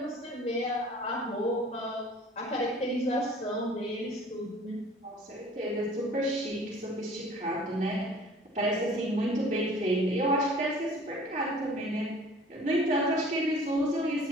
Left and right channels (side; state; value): both; normal; correlation 0.49